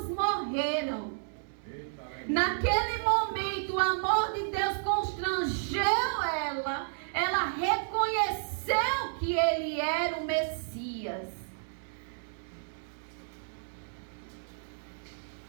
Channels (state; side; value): silent; left; digital silence